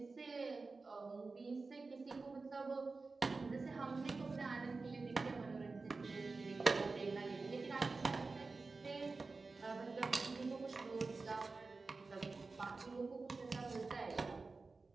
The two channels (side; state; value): left; quieter; 3.9 dB